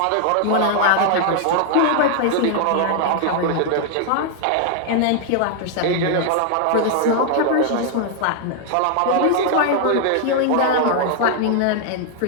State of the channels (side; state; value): both; different; correlation 0.00